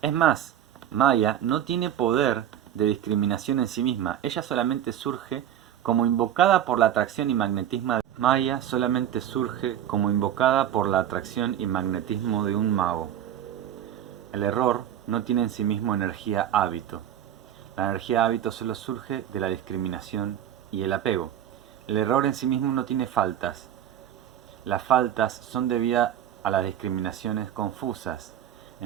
Es más, Maya no tiene poder de discriminación en sí misma, ella solamente surge como invocada por la atracción y magnetismo. Maya solamente surge como invocada por la atracción y magnetismo de un mago. El error no tiene en sí mismo energía hábito. La energía hábito solo surge de la discriminación y el apego. El error en sí mismo no tiene faltas. Las faltas son debidas a las discriminaciones confusas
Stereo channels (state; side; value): quieter; left; 10.7 dB